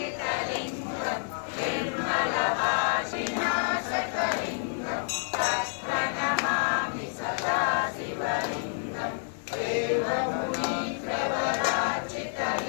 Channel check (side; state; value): right; silent; 59 dB below the other